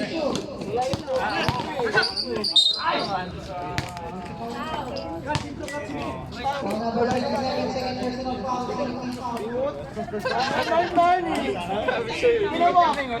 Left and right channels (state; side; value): identical; both; correlation 1.00